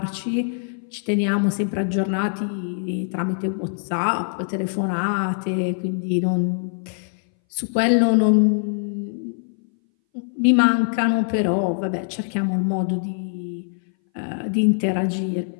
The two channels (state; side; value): silent; right; 60 dB below the other